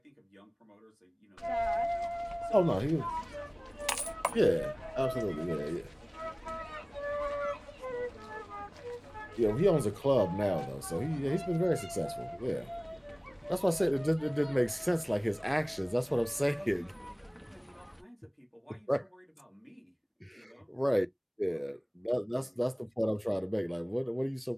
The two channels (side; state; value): both; identical; correlation 1.00